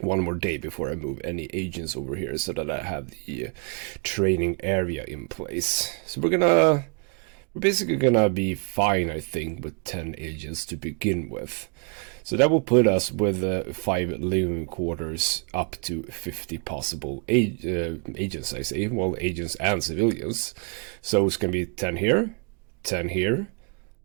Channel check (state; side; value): quieter; left; 36.0 dB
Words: day before I move any agents over here so that I have the training area in place. So we're basically gonna be fine, I think, with 10 agents to begin with. So that will put us with 5 living quarters up to 50 possible agents, I say. Well, agents and civilians. So it's gonna be 10 here, 10 here.